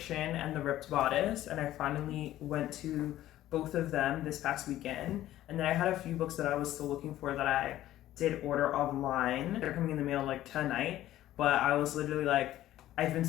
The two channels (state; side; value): quieter; right; 13.9 dB